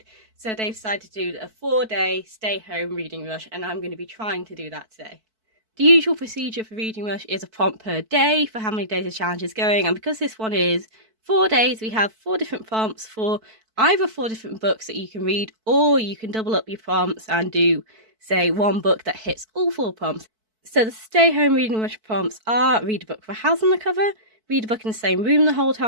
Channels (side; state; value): left; late; 4.5 ms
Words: So they've decided to do a 4-day stay-home reading rush, and I'm going to be trying to do that today. The usual procedure for Reading Rush is a prompt per day for how many days the challenge is going, and because this one is 4 days, we have 4 different prompts for either 4 different books that you can read, or you can double up your prompts and do, say, one book that hits all 4 prompts. So the Stay Home Reading Rush prompts are: read a book with a house on the cover, read a book in the same room the whole